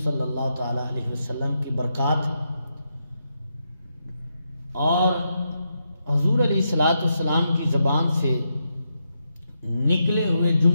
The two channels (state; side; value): inverted; both; correlation -0.82